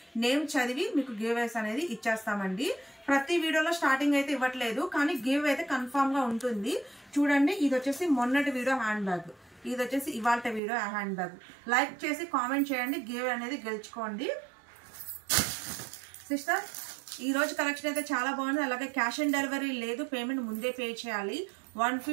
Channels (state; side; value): drops out; left; at 10.6 s